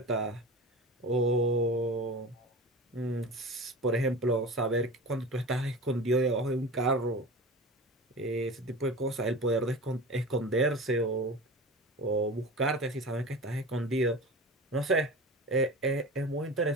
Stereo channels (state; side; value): normal; both; correlation 0.32